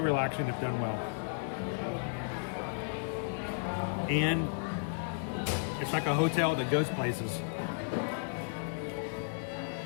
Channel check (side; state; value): right; silent; digital silence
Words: if done well. And it's like a hotel that goes places.